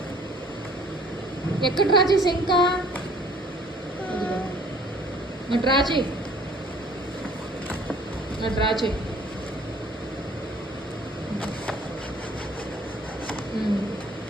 ఎక్కడ డ్రా చేసా? ఇంకా డ్రా చేయి, డ్రా చేయి.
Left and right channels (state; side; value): normal; both; correlation 0.54